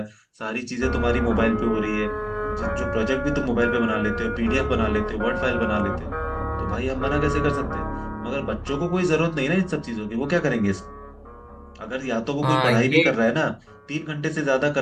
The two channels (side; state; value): both; identical; correlation 1.00